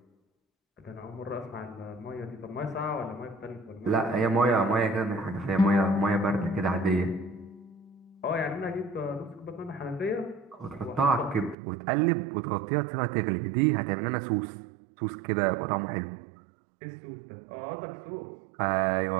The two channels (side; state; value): left; drops out; at 11.6 s